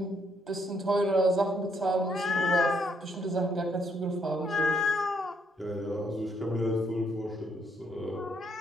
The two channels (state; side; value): normal; both; correlation 0.72